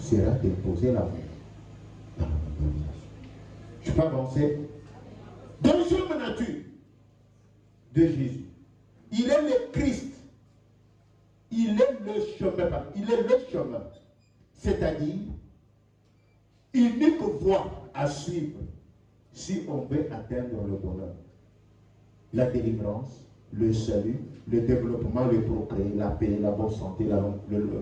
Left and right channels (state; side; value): identical; both; correlation 1.00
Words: d'imposer l'amour dans la mondialisation. Je peux avancer. Deuxième nature de Jésus. Il est le Christ. Il est le chemin. Il est le chemin. C'est-à-dire, unique voie à suivre si on veut atteindre le bonheur. La délivrance, le salut, le développement, le progrès, la paix, la bonne santé, une